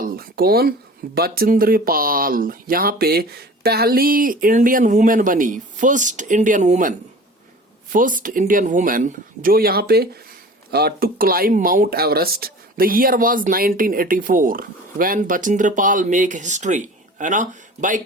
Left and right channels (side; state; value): both; normal; correlation 0.41